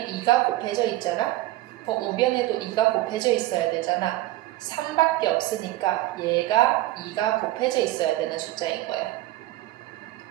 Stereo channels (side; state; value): left; quieter; 16.5 dB